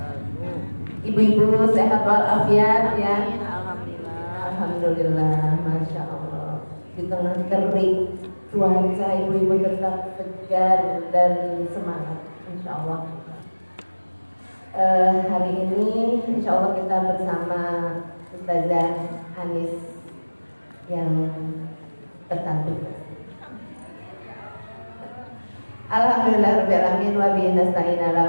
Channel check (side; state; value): both; inverted; correlation -1.00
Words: Ibu-ibu sehat walafiat ya. Amin, alhamdulillah. Alhamdulillah, masya Allah. Di tengah terik cuaca, ibu-ibu tetap segar dan semangat, insya Allah. Hari ini, insya Allah kita bersama Ustazah Anis yang tercantik. Alhamdulillah rabbil alamin wa bihi nasta'in